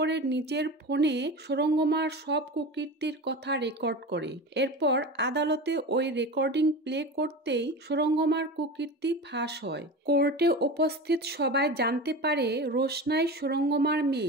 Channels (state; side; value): normal; both; correlation 0.29